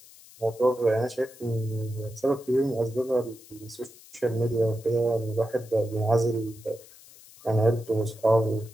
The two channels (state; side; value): noise; left; hiss, 22 dB below the sound